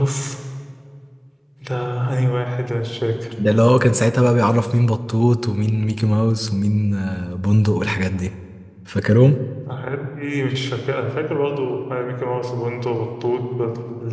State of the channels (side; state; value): both; identical; correlation 1.00